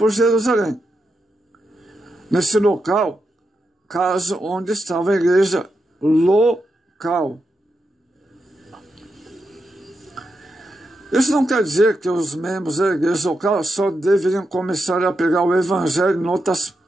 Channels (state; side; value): normal; both; correlation 0.86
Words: Jerusalém. Nesse local, caso onde estava a igreja local. Isso não quer dizer que os membros da igreja local só deveriam começar a pregar o evangelho em outras